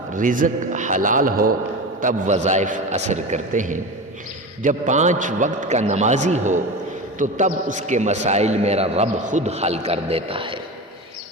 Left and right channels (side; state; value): both; normal; correlation 0.26